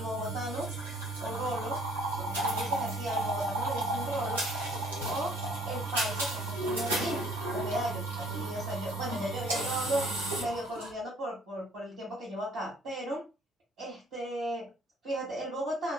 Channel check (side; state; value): both; normal; correlation 0.58